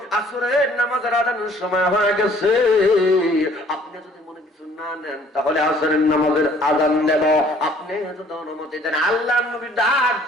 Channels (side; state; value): both; normal; correlation 0.57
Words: আসরের নামাজের আযানের সময় হয়ে গেছে, আপনি যদি মনে কিছু না নেন তাহলে আসরের নামাজের আযান দেব, আপনি যদি অনুমতি দেন। আল্লাহর নবী ডাক